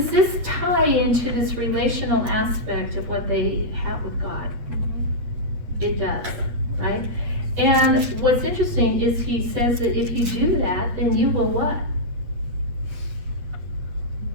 this tie into this relational aspect of what they have with God? It does, right? And what's interesting is he says that if you do that, then you will what?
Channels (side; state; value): left; late; 8.3 ms